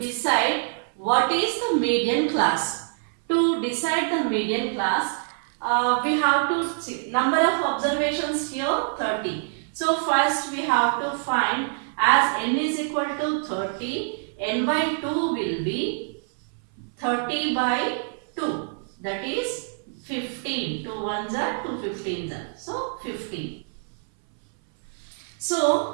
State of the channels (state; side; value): silent; left; 58 dB below the other